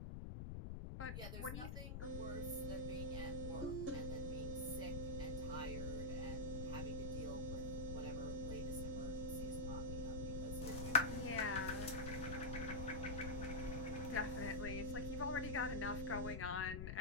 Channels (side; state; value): left; noise; rumble, 3 dB below the sound